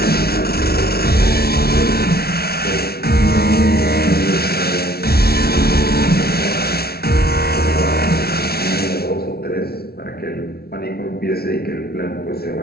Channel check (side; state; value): right; late; 0.45 ms